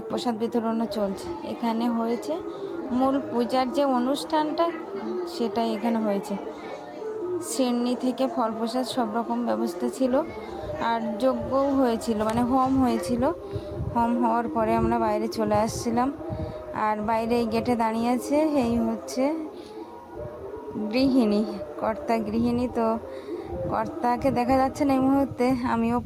প্রসাদ বিতরণও চলছে। এখানে হয়েছে মূল পূজার যে অনুষ্ঠানটা, সেটাই এখানে হয়েছে। সিন্নি থেকে ফল প্রসাদ সব রকম ব্যবস্থা ছিল, আর যজ্ঞও হয়েছিল, মানে হোম হয়েছিল। হোম হওয়ার পরে আমরা বাইরে চলে আসছিলাম, আর বাইরে এই গেটে দাঁড়িয়ে আছে, এই হচ্ছে গৃহিণী, কর্তা গৃহিণী, তো কর্তাকে দেখা যাচ্ছে না এই মুহূর্তে। আমিও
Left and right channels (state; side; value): identical; both; correlation 1.00